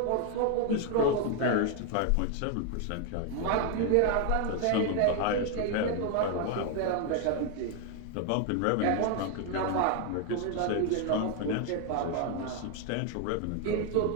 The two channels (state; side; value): different; both; correlation 0.01